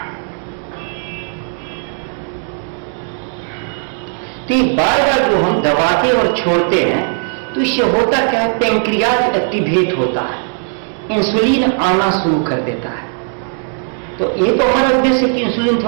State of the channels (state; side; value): silent; left; 62 dB below the other